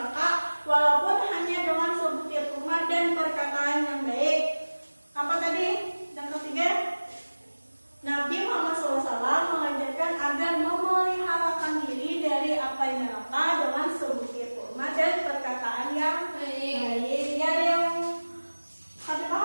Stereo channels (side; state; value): both; inverted; correlation -1.00